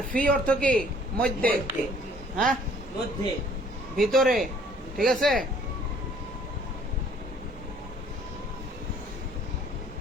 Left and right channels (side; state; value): both; normal; correlation 0.58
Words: ফি অর্থ কি? মধ্যে। হ্যাঁ, মধ্যে, ভিতরে। ঠিক আছে।